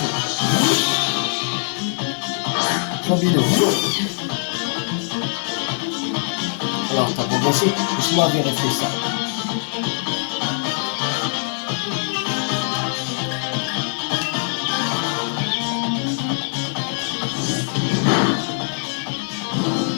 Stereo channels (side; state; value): right; silent; 60 dB below the other